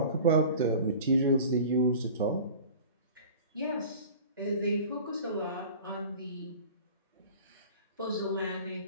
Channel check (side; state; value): both; inverted; correlation -0.41